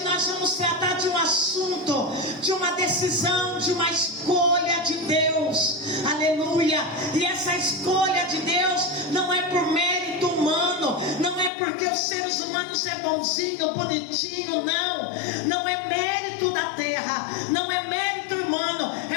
nós vamos tratar de um assunto, de uma decisão, de uma escolha de Deus. aleluia. E essa escolha de Deus não é por mérito humano, não é porque os seres humanos é bonzinho, bonitinho, não é mérito da terra, não é mérito humano,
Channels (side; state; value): right; drops out; at 11.5 s